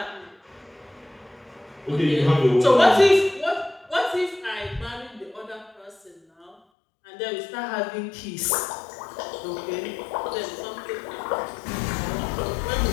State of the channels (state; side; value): drops out; right; at 6.6 s